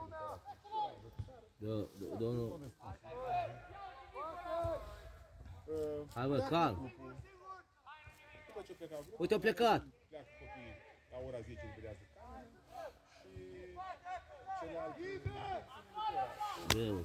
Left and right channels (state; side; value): identical; both; correlation 1.00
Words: Domnul... Hai, bă, calm. După ce plecau grupul, Uite, au plecat. pleacă copiii la ora 10 liberează camera și celelalte... Greu,